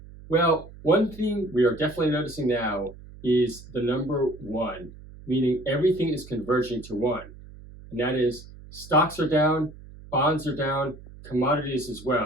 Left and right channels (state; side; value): noise; right; hum, 18 dB below the sound